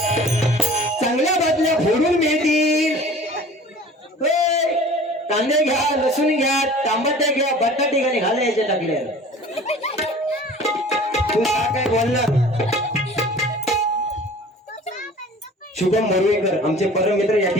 कांदे घ्या लसूण घ्या टमाटे घ्या बटाटे घ्या घाला याच्या टाकले तू काय बोलणार शुभम मोरवेकर आमचे परम मित्र या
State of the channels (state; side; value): normal; both; correlation 0.45